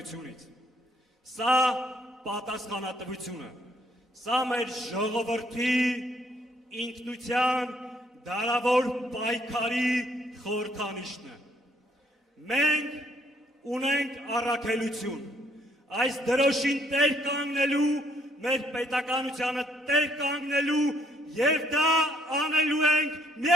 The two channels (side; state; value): both; normal; correlation 0.68